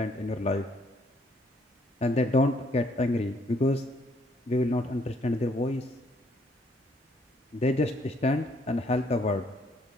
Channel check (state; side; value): normal; both; correlation 0.67